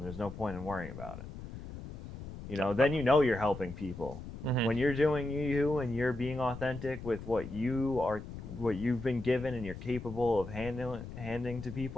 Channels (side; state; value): left; noise; rumble, 11 dB below the sound